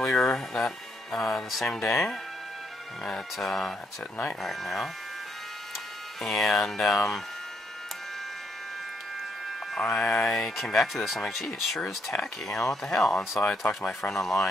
that the same day. It's at night right now, and I came back to this. I'm like, gee, it sure is tacky. You know, what the hell? And so I talked to my friend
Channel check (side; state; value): both; normal; correlation 0.74